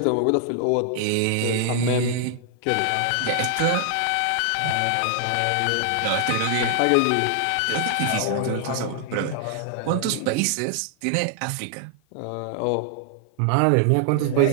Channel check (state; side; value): different; both; correlation 0.00